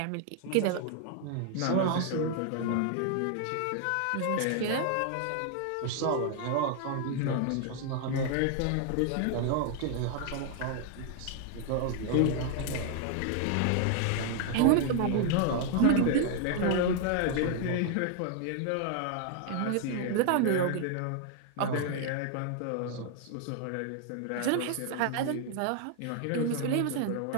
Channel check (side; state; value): both; different; correlation 0.00